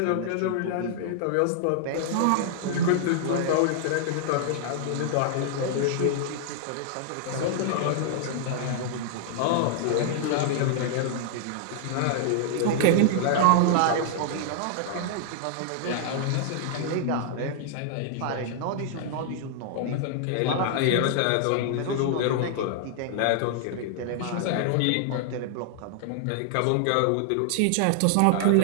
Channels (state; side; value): different; both; correlation -0.01